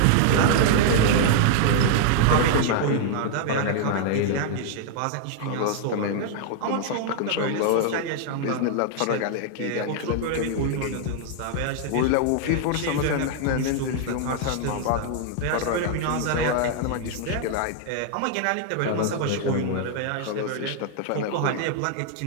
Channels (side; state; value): both; different; correlation 0.00